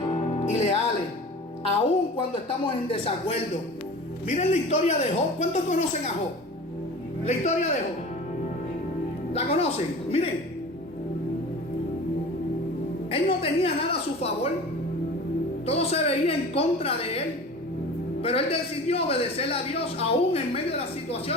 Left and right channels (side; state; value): both; normal; correlation 0.38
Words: y leales, aun cuando estamos en desacuerdo. Miren la historia de Job. ¿Cuántos conocen a Job? La historia de Job. ¿La conocen? Miren. Él no tenía nada a su favor. Todo se veía en contra de él. Pero él decidió obedecer a Dios aún en medio de las